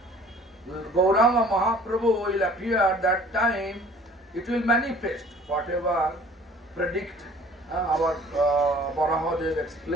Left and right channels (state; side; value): normal; both; correlation 0.51